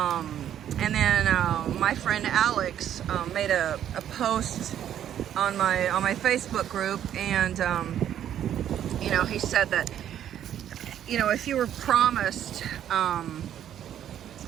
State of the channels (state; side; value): quieter; left; 10.4 dB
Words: And then my friend Alex made a post on my Facebook group, and you know, he said that, you know, if you were promised